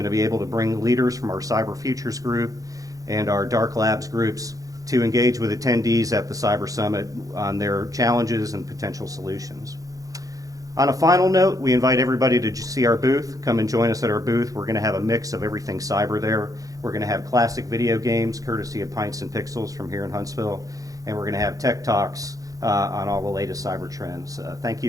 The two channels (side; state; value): left; late; 0.17 ms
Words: to be able to bring leaders from our Cyber Futures group and our Dark Labs groups to engage with attendees at the Cyber Summit on their challenges and potential solutions. On a final note, we invite everybody to see our booth. Come and join us at our booth. We're going to have a mix of everything cyber there. We're going to have classic video games, courtesy of Pints and Pixels from here in Huntsville, and we're going to have tech talks on all the latest cyber trends. Thank